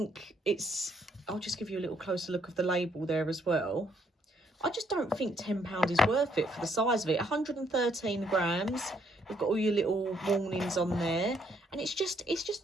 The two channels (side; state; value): both; normal; correlation 0.70